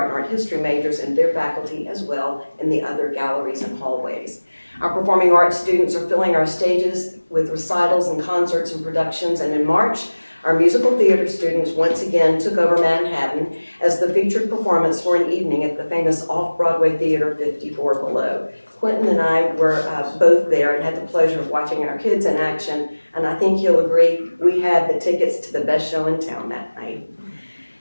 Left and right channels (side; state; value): both; inverted; correlation -1.00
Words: and art history majors and their faculty as well in the other galleries and hallways. Our performing arts students are filling our stages with recitals and concerts and productions, and in March, our musical theater students once again took over Manhattan as the featured performance for an evening at the famous Off-Broadway Theater 54 Below. Quentin and I were both there and had the pleasure of watching our kids in action, and I think you'll agree we had the tickets to the best show in town that night.